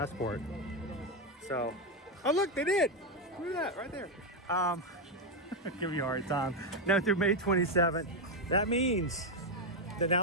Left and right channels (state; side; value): normal; both; correlation 0.05